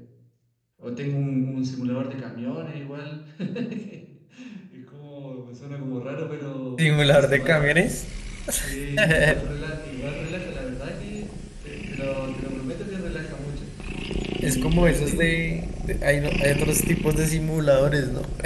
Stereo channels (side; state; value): both; identical; correlation 1.00